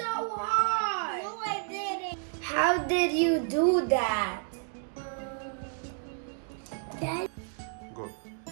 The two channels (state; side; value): silent; left; 57 dB below the other